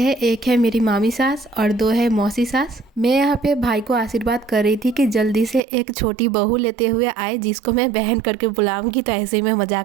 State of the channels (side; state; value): left; drops out; at 5.6 s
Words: एक है मेरी मामी सास और 2 है मौसी सास। मैं यहाँ पे भाई को आशीर्वाद कर रही थी कि जल्दी से एक छोटी बहू लेते हुए आए, जिसको मैं बहन करके बुलाऊंगी। तो ऐसे ही मैं